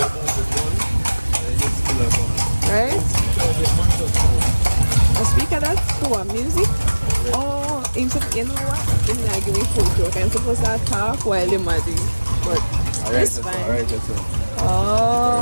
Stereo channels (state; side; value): inverted; both; correlation -1.00